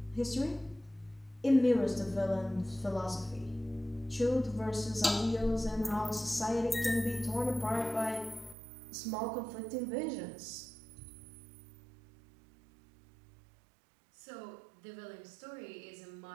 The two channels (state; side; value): drops out; left; at 8.6 s